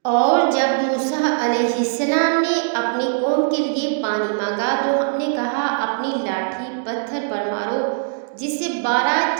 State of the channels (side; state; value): left; silent; digital silence